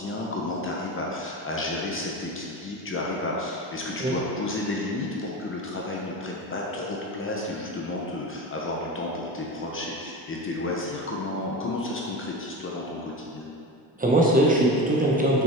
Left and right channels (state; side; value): normal; both; correlation 0.27